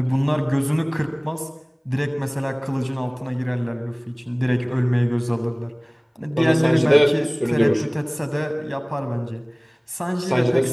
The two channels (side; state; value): both; identical; correlation 1.00